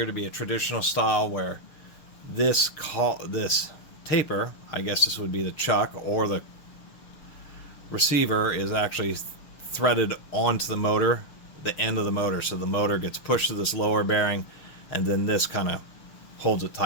to be a traditional style where this taper, I guess this would be the chuck, or the receiver is actually threaded onto the motor, the end of the motor, so the motor gets pushed to this lower bearing, and then this kind of holds it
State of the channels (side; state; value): right; late; 6.9 ms